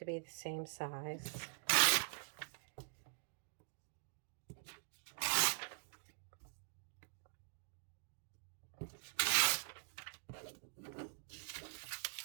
be the same size.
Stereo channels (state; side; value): silent; left; digital silence